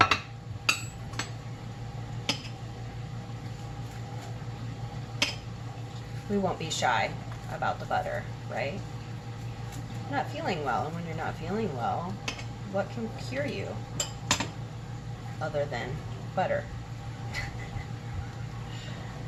We won't be shy about the butter, right? Not feeling well, and when you're not feeling well, what can cure you other than butter?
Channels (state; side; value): identical; both; correlation 1.00